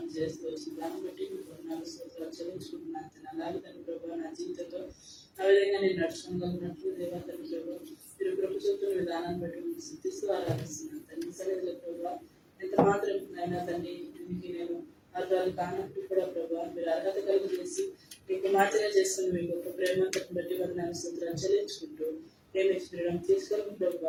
చేస్తూ వచ్చింది. దాన్ని బట్టి మీకు 4 స్తోత్రాలు చెల్లించుకుంటున్నాను. అలాగే తండ్రి ప్రభు నా జీవితంలో ఆ విధంగా నేను నడుచుకోగలిగినట్లు దేవా తండ్రి ప్రభు మీరు కృప చూపుతున్న విధానాన్ని బట్టి మీకు సిద్ధిస్తూ ఆరాధిస్తున్నాను తండ్రి. సరిగ్గా ప్రభు ఎంత మాత్రం అయినా తండ్రి దీనికి నేను అర్థాలు కానప్పుడు కూడా ప్రభు మీరు అర్హత కలుగు చేసి మీకు మాత్రమే చేసుకుని మీ గొప్ప ప్రేమను బట్టి వారి నా స్తోత్రాలు చెల్లించుకుంటూ ప్రేమించడం తీసుకొని ప్రభు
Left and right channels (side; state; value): both; identical; correlation 1.00